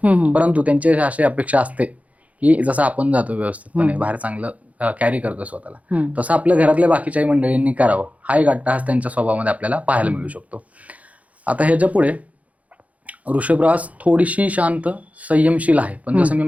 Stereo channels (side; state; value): left; late; 0.069 ms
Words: परंतु त्यांची अशी अपेक्षा असते की जसं आपण जातो व्यवस्थितपणे बाहेर चांगलं कॅरी करतो स्वतःला, तसं आपल्या घरातल्या बाकीच्याही मंडळींनी करावं. हा एक अट्टहास त्यांच्या स्वभावामध्ये आपल्याला पाहायला मिळू शकतो. आता ह्याच्या पुढे वृषभ रास थोडीशी शांत, संयमशील आहे, पण जसं मी